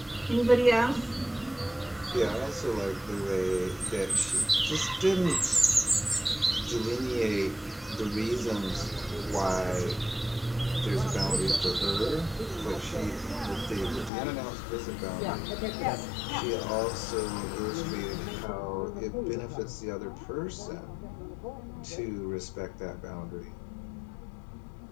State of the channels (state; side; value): drops out; right; at 14.1 s